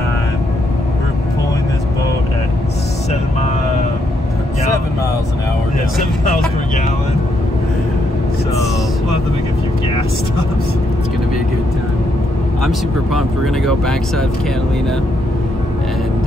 We're pulling this boat at 7 miles per gallon. 7 miles an hour. Yeah, 7 miles per gallon. So we'll have to make a few gas stops. It's gonna be a good time. I'm super pumped. We're gonna go backside of Catalina,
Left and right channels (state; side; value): normal; both; correlation 0.77